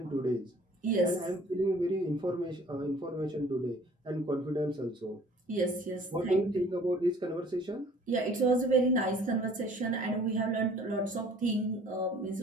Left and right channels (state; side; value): normal; both; correlation 0.53